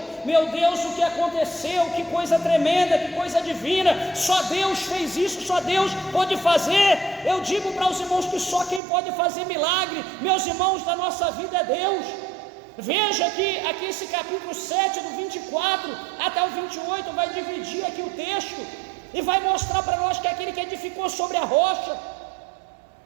Meu Deus, o que aconteceu? Que coisa tremenda, que coisa divina! Só Deus fez isso, só Deus pode fazer. Eu digo para os irmãos que só quem pode fazer milagre, meus irmãos, da nossa vida é Deus. Veja aqui esse capítulo 7, do 24 até o 28, vai dividir aqui o texto e vai mostrar para nós que aquele que edificou sobre a rocha,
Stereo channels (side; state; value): left; drops out; at 8.8 s